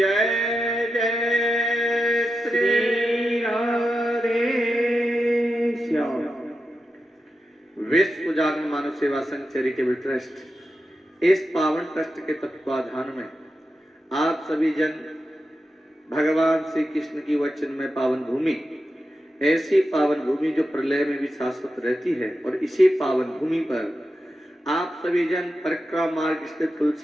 जय श्री राधे श्याम। विश्व जागरण मानव सेवा संघ चैरिटेबल ट्रस्ट इस पावन ट्रस्ट के तत्वाधान में आप सभी जन भगवान श्री कृष्ण की वचन में पावन भूमि, ऐसी पावन भूमि जो प्रलय में भी शाश्वत रहती है, और इसी पावन भूमि पर आप सभी जन परिक्रमा मार्ग स्थित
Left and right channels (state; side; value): normal; both; correlation 0.89